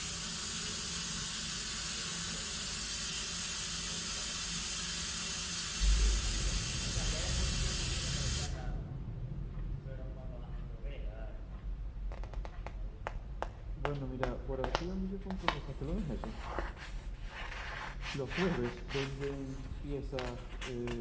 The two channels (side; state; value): both; identical; correlation 1.00